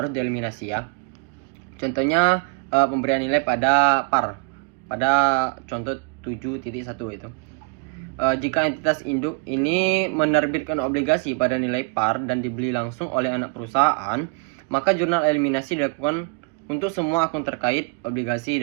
dieliminasi ya. Contohnya pemberian nilai pada par. Pada contoh 7.1 itu. Jika entitas induk ini menerbitkan obligasi pada nilai par dan dibeli langsung oleh anak perusahaan, maka jurnal eliminasi dilakukan untuk semua akun terkait obligasi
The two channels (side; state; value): left; quieter; 31.8 dB